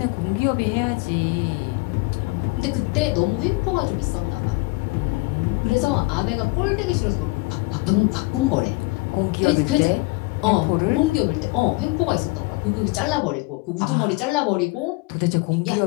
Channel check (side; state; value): right; quieter; 24.7 dB